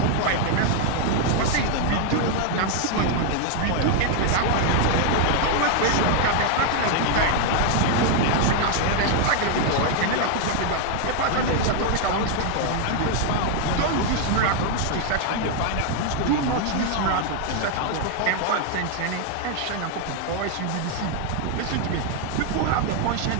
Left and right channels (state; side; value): different; both; correlation 0.00